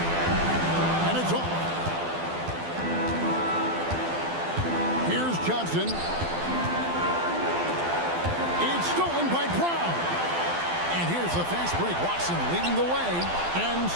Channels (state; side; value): late; left; 12 ms